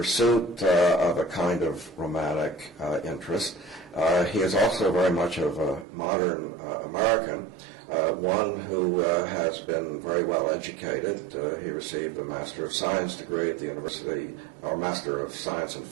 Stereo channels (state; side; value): drops out; left; at 5.9 s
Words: of a kind of romantic interest, he is also very much of a modern American, one who has been very well educated. He received a Master of Science degree at the University, or Master of Science and